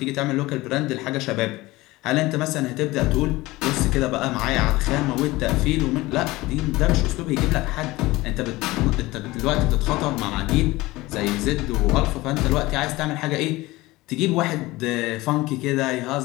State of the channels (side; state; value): right; quieter; 19.8 dB